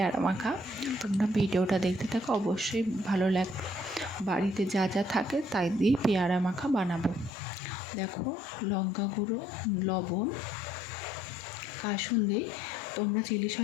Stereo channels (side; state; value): right; drops out; at 7.3 s